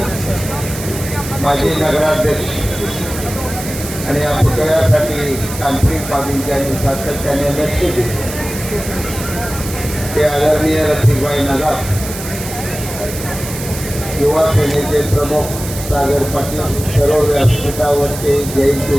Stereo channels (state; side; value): noise; right; hiss, 10 dB below the sound